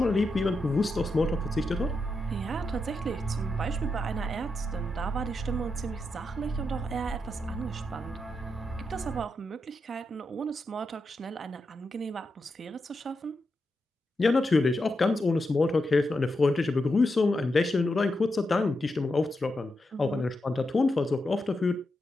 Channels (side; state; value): both; normal; correlation 0.86